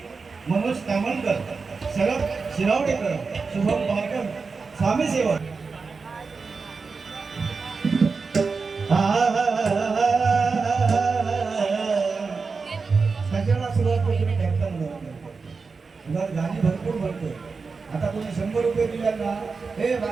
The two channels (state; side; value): quieter; left; 4.6 dB